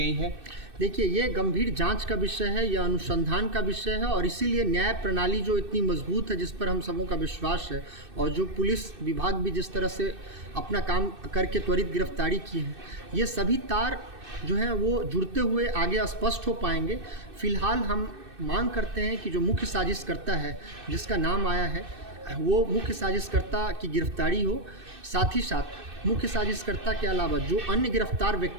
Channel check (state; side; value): late; left; 2.6 ms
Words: है। देखिए, ये गंभीर जांच का विषय है, यह अनुसंधान का विषय है और इसीलिए न्याय प्रणाली जो इतनी मजबूत है, जिस पर हम सबों का विश्वास है और जो पुलिस विभाग भी जिस तरह से अपना काम करके त्वरित गिरफ्तारी की है, ये सभी तार जो हैं वो जुड़ते हुए आगे स्पष्ट हो पाएंगे। फिलहाल हम मांग करते हैं कि जो मुख्य साजिशकर्ता है जिसका नाम आया है वो मुख्य साजिशकर्ता की गिरफ्तारी हो। साथ ही साथ मुख्य साजिशकर्ता के अलावा जो अन्य गिरफ्तार